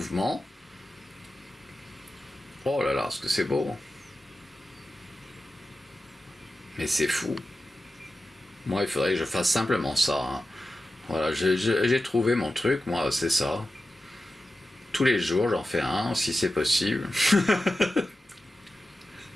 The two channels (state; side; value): normal; both; correlation 0.93